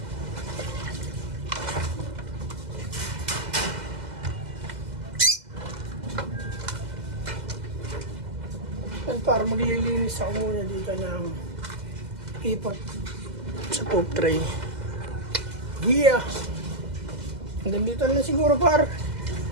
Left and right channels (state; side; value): late; left; 2.0 ms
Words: At para maglilinis ako muna dito ng ipot sa poop tray. Yeah! Hanggang dito na siguro par.